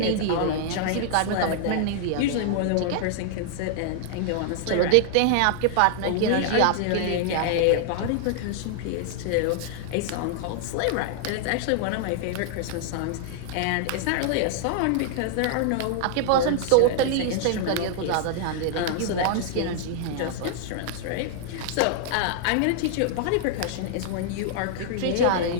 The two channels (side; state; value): both; different; correlation -0.01